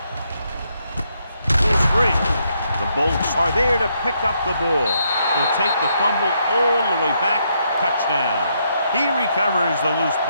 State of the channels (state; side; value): inverted; both; correlation -0.76